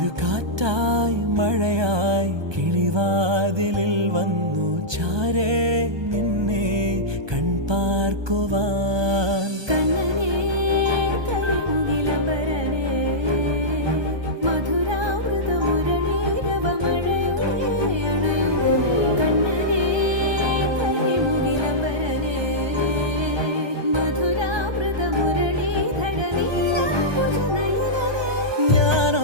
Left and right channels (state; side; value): late; left; 1.2 ms